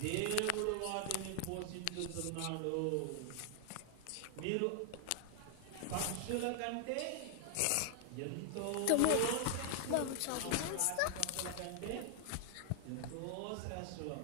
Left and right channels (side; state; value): both; different; correlation 0.00